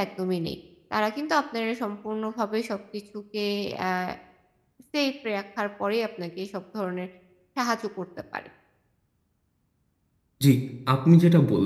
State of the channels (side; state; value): both; identical; correlation 1.00